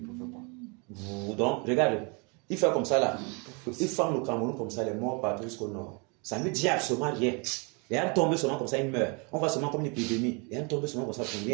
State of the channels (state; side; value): quieter; left; 32.7 dB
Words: faire quoi? Donc, regarde, il fait comme ça là. Il ferme le Cameroun comme ça, les morts partout jusqu'au nord. Ça ne dit absolument rien. Et un tombe seulement comme ça, il meurt. On voit seulement comme une épidémie. Et un tombe seulement comme ça,